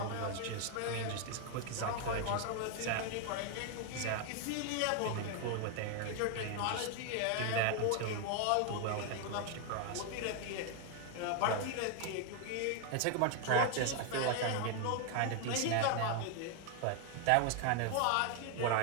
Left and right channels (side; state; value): both; different; correlation 0.00